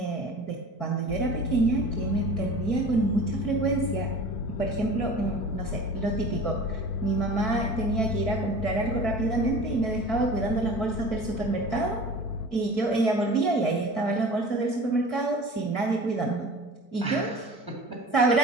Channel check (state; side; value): late; right; 4.6 ms